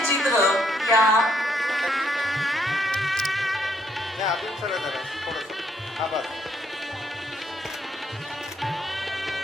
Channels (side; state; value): both; normal; correlation 0.71